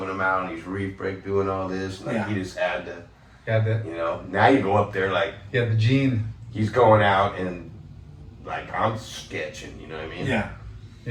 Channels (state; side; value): identical; both; correlation 1.00